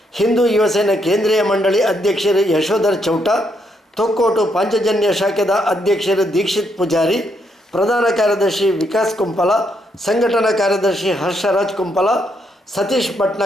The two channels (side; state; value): both; normal; correlation 0.76